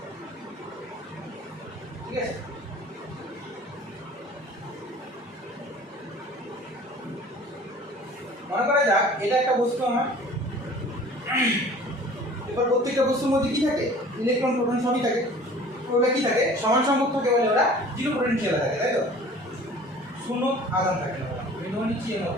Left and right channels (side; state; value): both; normal; correlation 0.47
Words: ঠিক আছে, মনে করা যাক এটা একটা বস্তু আমার। এবার প্রত্যেকটা বস্তুর মধ্যে কি থাকে, ইলেকট্রন প্রোটন সবই থাকে। ওগুলো কি থাকে, সমান সংখ্যক থাকে বলে ওরা জিরো পোটেনশিয়াল থাকে, তাই তো, শূন্য আধান থাকে না। আমি ধরে নিচ্ছি এর